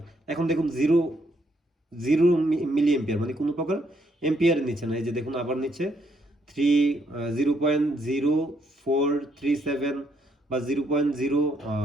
এখন দেখুন জিরো জিরো মিলি এম্পিয়ার মানে কোনো প্রকার এম্পিয়ার নিচ্ছে না। এই যে দেখুন আবার নিচ্ছে 0.0437 বা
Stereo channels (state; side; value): normal; both; correlation 0.73